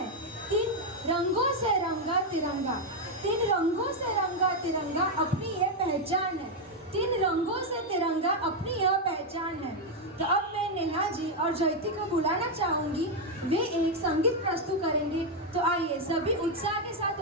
तीन रंगों से रंगा तिरंगा, तीन रंगों से रंगा तिरंगा अपनी यह पहचान है, तीन रंगों से तिरंगा अपनी यह पहचान है। तो अब मैं नेहा जी और जयती को बुलाना चाहूंगी, वे एक संगीत प्रस्तुत करेंगे। तो आइए सभी उत्साह के साथ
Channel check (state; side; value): normal; both; correlation 0.02